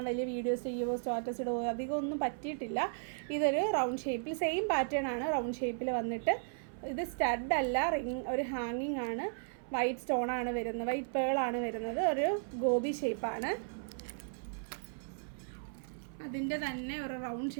വലിയ വീഡിയോസ് ചെയ്യുമോ സ്റ്റാറ്റസ് ഇടുമോ അധികം ഒന്നും പറ്റിയിട്ടില്ല. ഇതൊരു റൗണ്ട് ഷേപ്പിൽ സെയിം പാറ്റേൺ ആണ്, റൗണ്ട് ഷേപ്പിൽ വന്നിട്ട് ഇത് സ്റ്റഡ് അല്ല, ഒരു ഹാങ്ങിങ് ആണ്. വൈറ്റ് സ്റ്റോണാണ് വരുന്നത്, വൈറ്റ് പേളാണ് വരുന്നത്. ഒരു ഗോബി ഷേപ്പാണ്, അതിൻ്റെ തന്നെ ഒരു റൗണ്ട്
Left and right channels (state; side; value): silent; left; 54 dB below the other